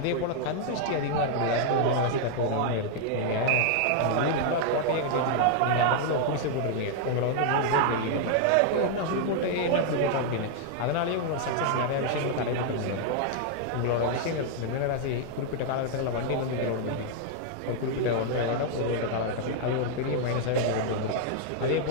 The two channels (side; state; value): both; different; correlation 0.00